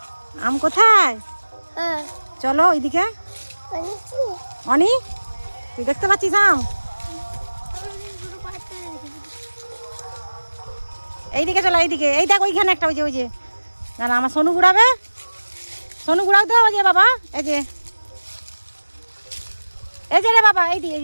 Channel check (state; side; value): inverted; both; correlation -1.00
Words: আম কোথায়? চলো ওইদিকে। অনি তুই দেখতে পাচ্ছিস আম? এইদিকে চলো, এইদিকে। এই দেখ ওইখানে একটা, ওই যে ওই যে। না না, আমার সোনু ঘুরাবে। সোনু ঘুরাও তো। ওই যে বাবা, এই যে এই যে রে বাবা, এইদিকে